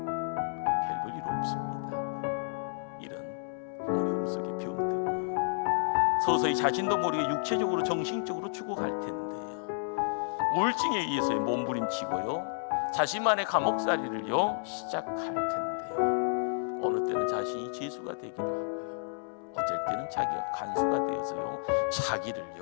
일 없습니다. 이런 어려움 속에 병들고요, 서서히 자신도 모르게 육체적으로 정신적으로 죽어갈 텐데요, 우울증에 의해서 몸부림치고요, 자신만의 감옥살이를요 시작할 텐데요, 어느 때는 자신이 죄수가 되기도 하고요, 어쩔 때는 자기가 간수가 되어서요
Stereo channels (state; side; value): silent; right; digital silence